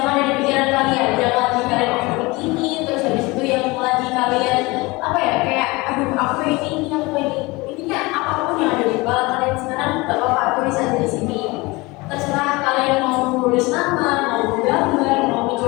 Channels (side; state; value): right; quieter; 23.5 dB